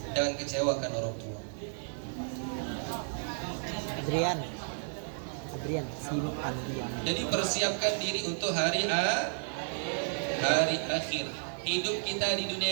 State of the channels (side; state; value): left; silent; digital silence